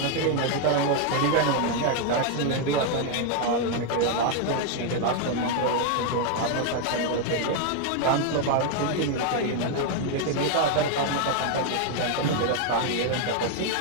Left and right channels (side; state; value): both; different; correlation 0.01